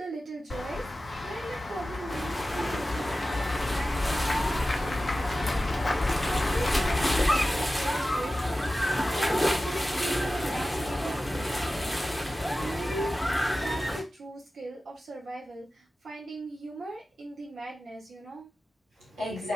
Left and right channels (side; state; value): both; normal; correlation 0.95